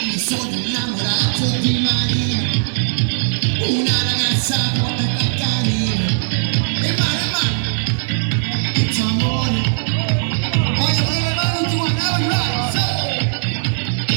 mi sono innamorato di Marina, una ragazza buona e carina. E male, il tuo amore, voglio vedere mano tua, never right, so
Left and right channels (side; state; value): left; silent; digital silence